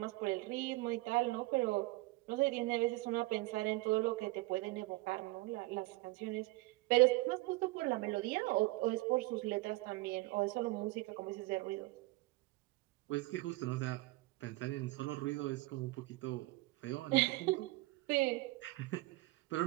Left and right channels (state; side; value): quieter; left; 21.0 dB